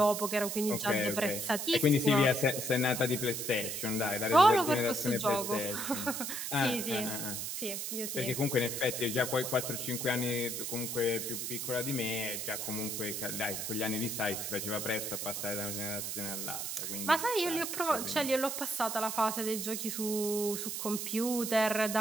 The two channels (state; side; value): noise; right; hiss, 4 dB below the sound